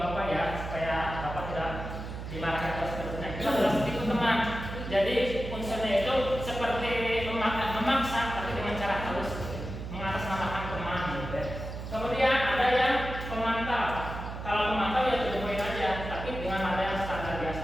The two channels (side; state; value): right; noise; hum, 8 dB below the sound